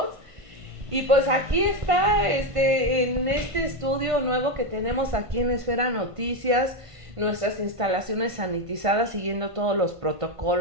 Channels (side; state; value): left; late; 1.5 ms